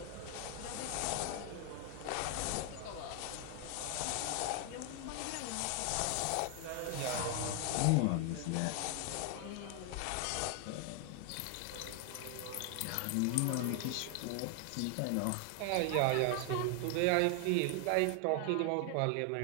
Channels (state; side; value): different; both; correlation 0.00